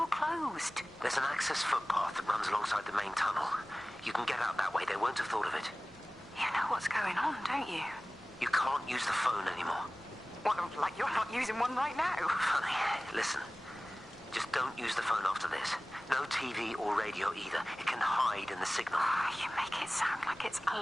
closed. There's an access footpath that runs alongside the main tunnel. You can get out that way. They won't have thought of it. You know what's going on, don't you? You can't use the phone anymore. What, like you're not using one right now? Funny. Listen. Just don't use the phone after this. No TV or radio either. It can hide in the signal. You make it sound like it's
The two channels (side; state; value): both; normal; correlation 0.98